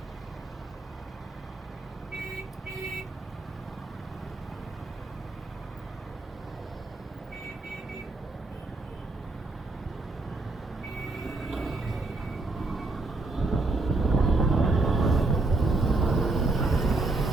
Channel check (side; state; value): left; quieter; 3.2 dB